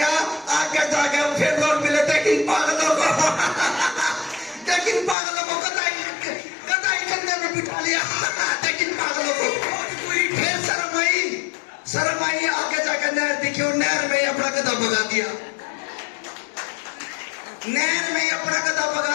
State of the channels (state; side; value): drops out; right; at 5.2 s